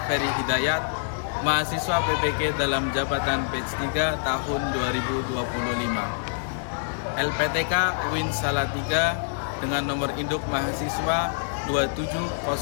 Ferry Hidayat, mahasiswa PPK dalam jabatan batch 3 tahun 2025. LPTK UIN Salatiga dengan nomor induk mahasiswa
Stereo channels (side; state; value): right; silent; digital silence